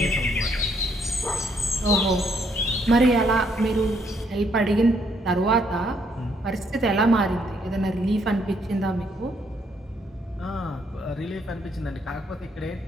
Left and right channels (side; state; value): both; normal; correlation 0.71